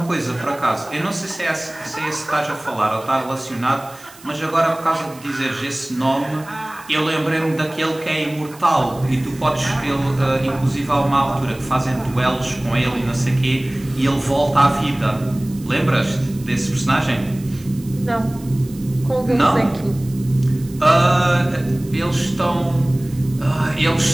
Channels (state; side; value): noise; right; hiss, 22 dB below the sound